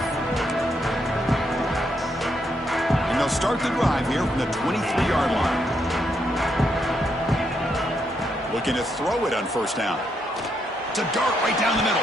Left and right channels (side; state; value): both; normal; correlation 0.78